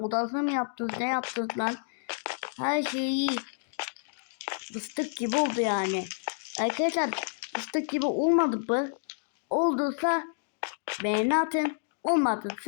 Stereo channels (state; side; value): silent; right; digital silence